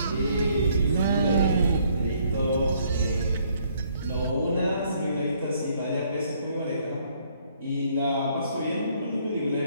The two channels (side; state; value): both; inverted; correlation -0.66